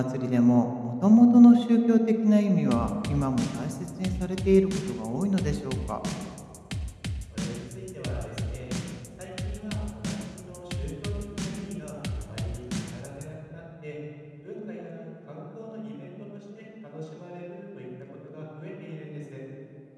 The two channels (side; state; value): both; identical; correlation 1.00